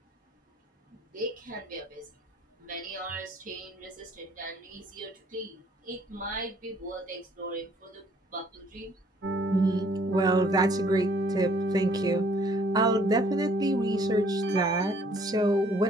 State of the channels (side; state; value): both; normal; correlation 0.61